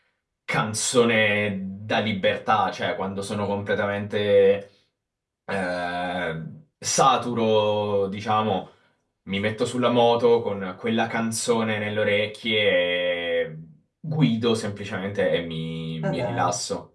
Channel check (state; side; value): identical; both; correlation 1.00